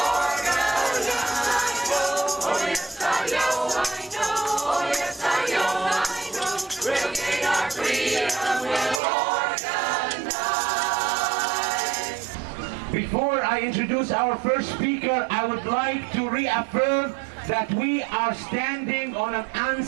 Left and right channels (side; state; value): left; drops out; at 9.0 s